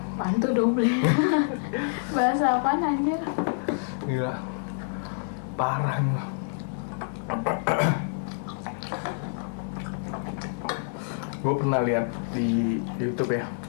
tuh doble? Bahasa apaan anjir? gila. Parah nih. Gue pernah lihat di YouTube ya,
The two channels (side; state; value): right; silent; 60 dB below the other